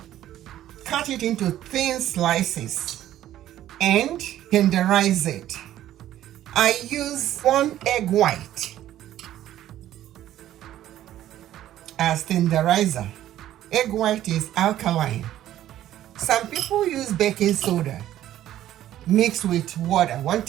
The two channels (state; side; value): quieter; left; 12.7 dB